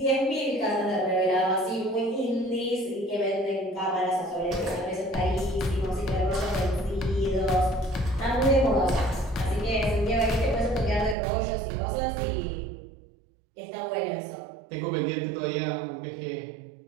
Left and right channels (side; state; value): left; drops out; at 11.2 s